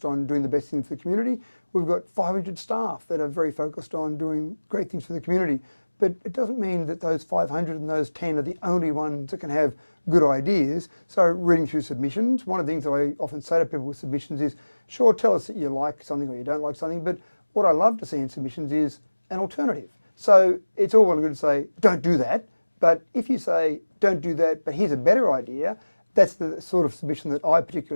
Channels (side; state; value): both; inverted; correlation -1.00